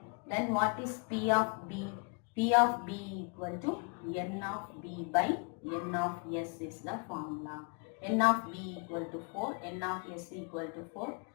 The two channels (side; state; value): right; quieter; 35.9 dB